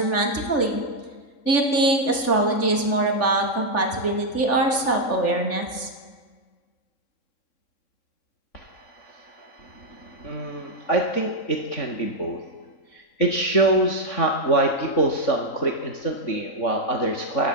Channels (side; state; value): right; late; 3.4 ms